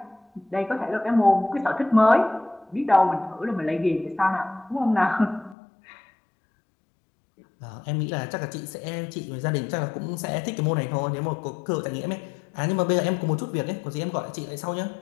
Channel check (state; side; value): drops out; right; at 5.6 s